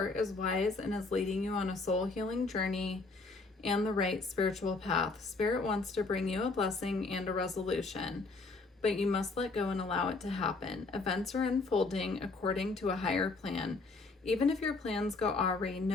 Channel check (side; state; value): right; quieter; 3.7 dB